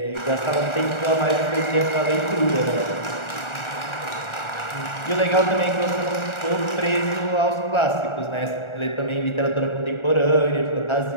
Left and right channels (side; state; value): right; late; 1.4 ms